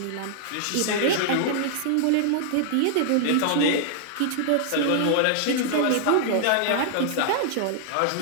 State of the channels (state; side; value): different; both; correlation -0.01